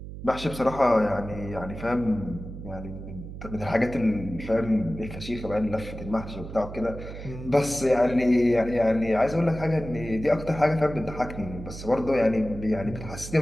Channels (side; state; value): right; noise; hum, 11 dB below the sound